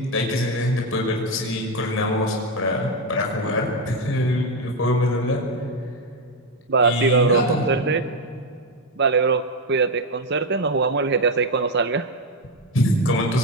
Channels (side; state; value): both; normal; correlation 0.08